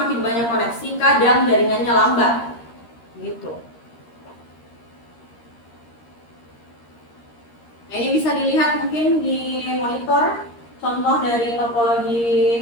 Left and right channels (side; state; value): right; late; 13 ms